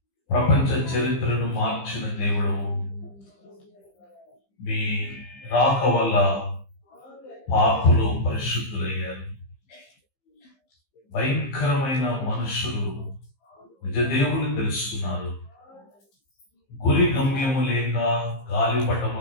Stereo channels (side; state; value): right; late; 15 ms